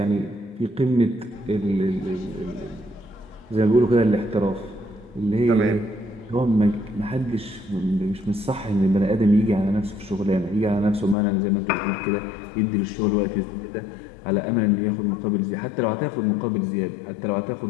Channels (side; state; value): right; drops out; at 11.2 s